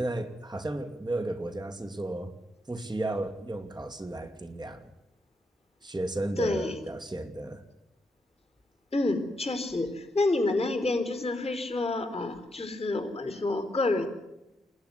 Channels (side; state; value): both; normal; correlation 0.81